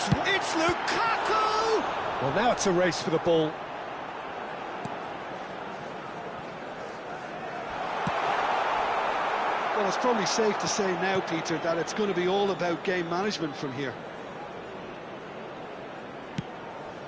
Lukaku! Well, now it's a race for the ball. Well, it's probably safe to say now, Peter, that it's going to be all about game management from here.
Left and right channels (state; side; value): identical; both; correlation 1.00